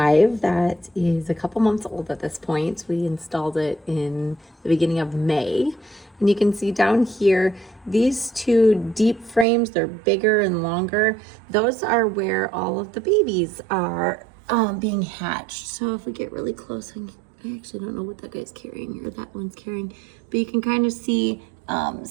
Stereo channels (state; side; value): drops out; left; at 9.5 s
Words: that is a couple months old at this point. We installed it in the beginning of May. And you can see down here, these two deep frames, they're bigger and longer. Those are where all of the babies are being hatched. So if we get really close, I actually don't know what that guy's carrying or that one's carrying, but you can kind of see